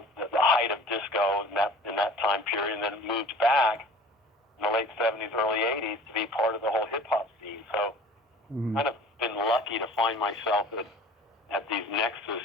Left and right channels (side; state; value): both; normal; correlation 0.45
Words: height of disco in that time period, and then moved back in the late '70s, early '80s to be part of the whole hip-hop scene. So kind of been lucky to find myself at these nexus